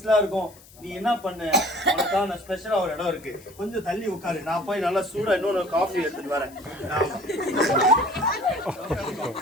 இருக்கும். நீ என்ன பண்ணு, உனக்காக நான் ஸ்பெஷலா ஒரு இடம் இருக்கு, கொஞ்சம் தள்ளி உட்காரு, நான் போய் நல்லா சூடா இன்னொரு காஃபி எடுத்துட்டு வரேன்.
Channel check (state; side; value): noise; left; hiss, 23 dB below the sound